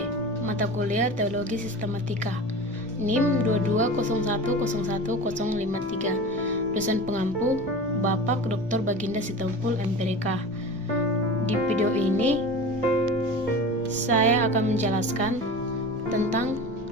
mata kuliah Teologi Sistematika, NIM 221011053. Dosen pengampu Bapak Dr. Baginda Sitompul MPDK. Di video ini saya akan menjelaskan tentang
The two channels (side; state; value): both; normal; correlation 0.34